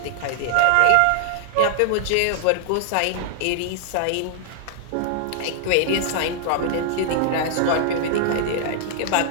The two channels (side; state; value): both; different; correlation -0.01